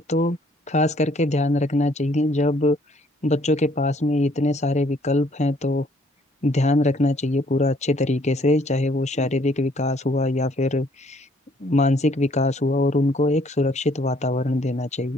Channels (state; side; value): normal; both; correlation 0.63